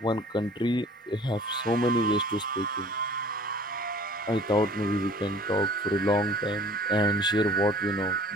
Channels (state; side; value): normal; both; correlation 0.49